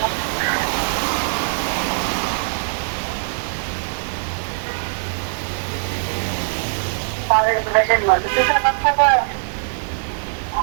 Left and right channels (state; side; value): silent; left; digital silence